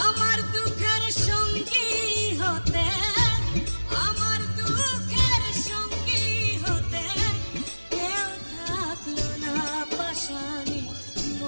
আমার দুঃখের সঙ্গী হতে, আমার দুঃখের সঙ্গী হতে কেউ থাকলো না, পাশানি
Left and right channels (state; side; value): inverted; both; correlation -1.00